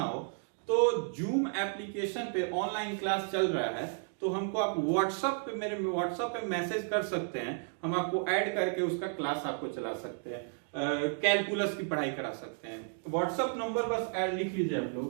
हो तो जूम एप्लीकेशन पे ऑनलाइन क्लास चल रहा है, तो हमको आप व्हाट्सएप पे, मेरे व्हाट्सएप पे मैसेज कर सकते हैं, हम आपको ऐड करके उसका क्लास आपको चला सकते हैं, कैलकुलस की पढ़ाई करा सकते हैं। व्हाट्सएप नंबर बस ऐड लिख लीजिए आप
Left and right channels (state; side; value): silent; left; 56 dB below the other